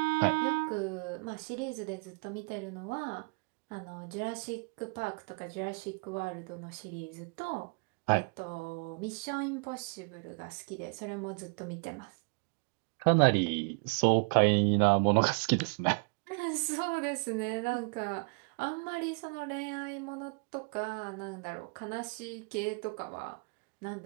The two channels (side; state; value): left; quieter; 35.9 dB